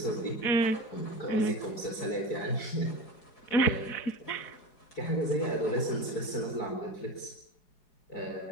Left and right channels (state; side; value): late; right; 4.8 ms